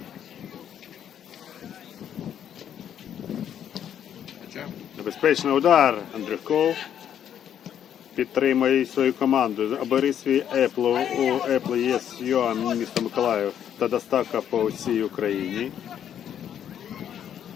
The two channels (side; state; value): right; quieter; 9.5 dB